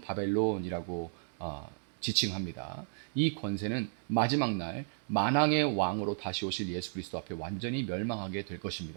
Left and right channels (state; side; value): silent; left; 55 dB below the other